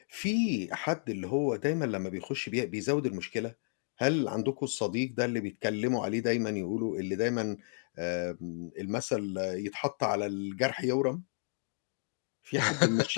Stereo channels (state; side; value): silent; right; digital silence